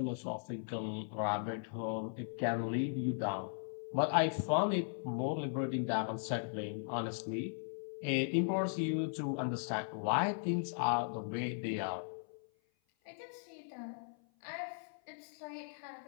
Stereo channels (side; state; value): right; silent; 53 dB below the other